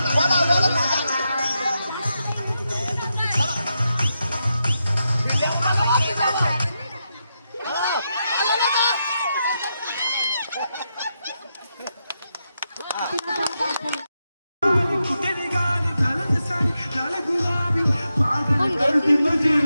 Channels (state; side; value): inverted; both; correlation -0.86